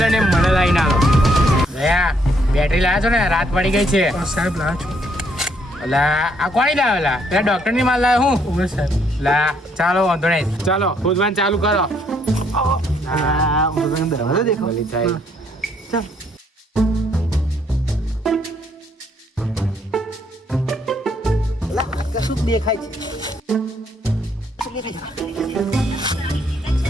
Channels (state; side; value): normal; both; correlation 0.69